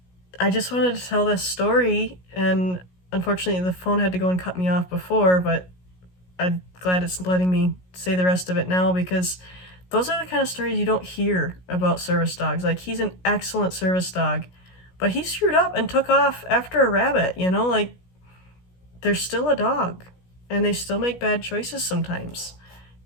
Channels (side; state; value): right; late; 16 ms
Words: I just wanted to tell this story, and unfortunately the phone had to go and cut me off before, but I'm glad it's letting me say the rest of it now, because those are the kind of stories you don't hear about service dogs. Like, he's an excellent service dog, but he screwed up and took off after a rabbit, you know? Like, they're still a dog, and they still make bad choices sometimes.